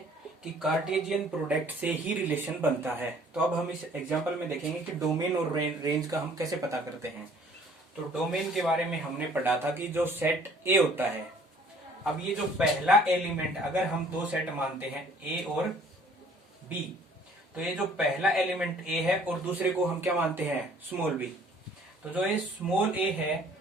कि कार्टेशियन प्रोडक्ट से ही रिलेशन बनता है। तो अब हम इस एग्जांपल में देखेंगे कि डोमेन और रेंज का हम कैसे पता करते हैं। तो डोमेन के बारे में हमने पढ़ा था कि जो सेट ए होता है, अब ये जो पहला एलिमेंट, अगर हम दो सेट मानते हैं ए और बी, तो ये जो पहला एलिमेंट ए है और दूसरे को हम क्या मानते हैं, स्मॉल बी। तो जो ये स्मॉल ए है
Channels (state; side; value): normal; both; correlation 0.56